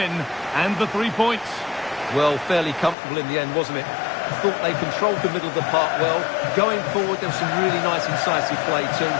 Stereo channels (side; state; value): right; drops out; at 3.0 s